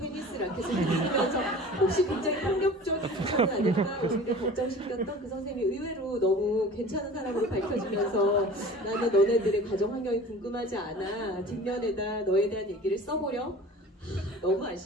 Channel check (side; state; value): both; normal; correlation 0.41